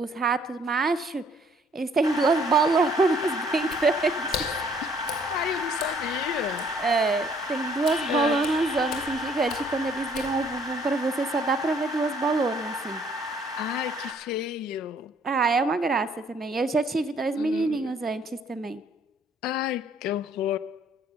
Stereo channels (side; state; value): both; normal; correlation 0.61